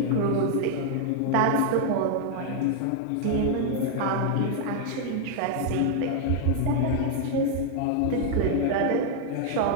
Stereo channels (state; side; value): different; both; correlation 0.00